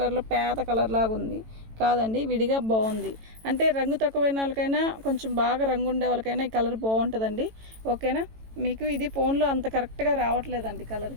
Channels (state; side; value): late; left; 18 ms